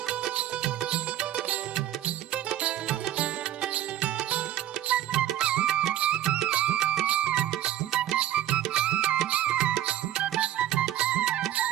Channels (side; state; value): left; quieter; 12.5 dB